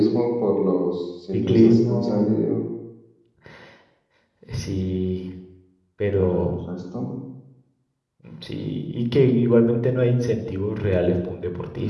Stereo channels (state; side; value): identical; both; correlation 1.00